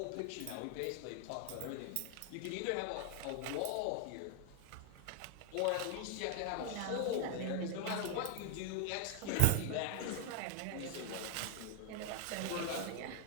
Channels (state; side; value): different; both; correlation 0.01